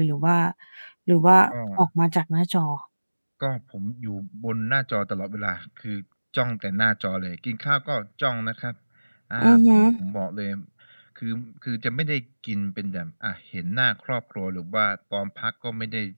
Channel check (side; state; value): both; inverted; correlation -1.00